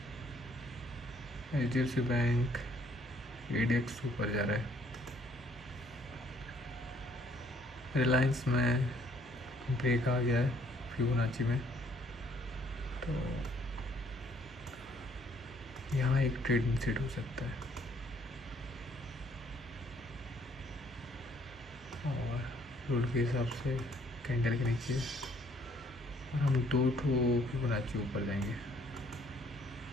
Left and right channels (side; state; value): both; normal; correlation 0.63